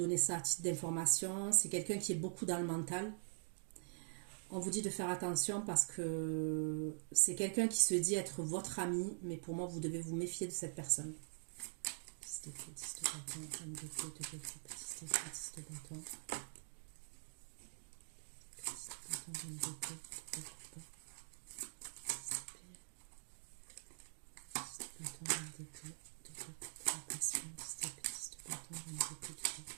ça à titre d'information. C'est quelqu'un qui est beaucoup dans le mental. On vous dit de faire attention parce que c'est quelqu'un qui se dit être votre ami, mais pour moi, vous devez vous méfier de cette personne.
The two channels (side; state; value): left; silent; digital silence